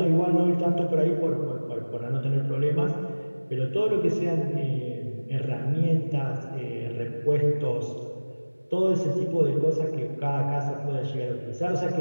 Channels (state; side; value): inverted; both; correlation -1.00